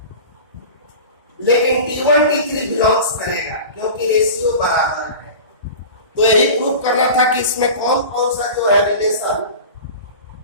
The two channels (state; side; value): inverted; both; correlation -0.34